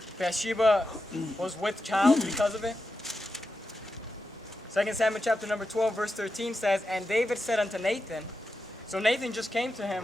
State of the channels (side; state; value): both; normal; correlation 0.89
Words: Bathsheba was with child because of it. 2 Samuel chapter number 12 verse 13 says, and David said unto Nathan, so Nathan just came to